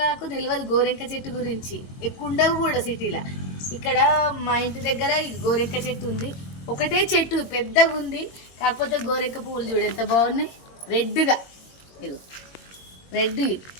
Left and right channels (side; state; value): right; late; 22 ms